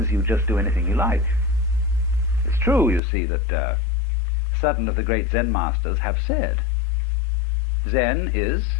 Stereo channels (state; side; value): drops out; right; at 3.0 s